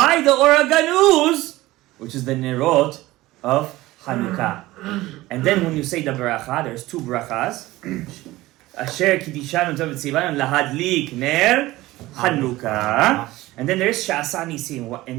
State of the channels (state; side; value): quieter; left; 18.1 dB